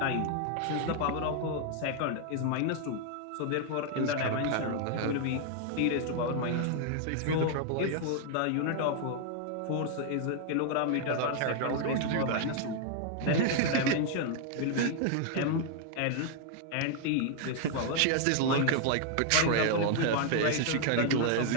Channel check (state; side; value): different; both; correlation 0.00